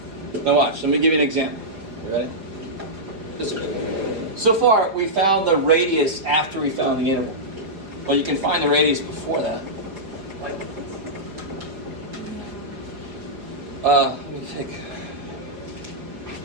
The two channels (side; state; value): left; late; 5.3 ms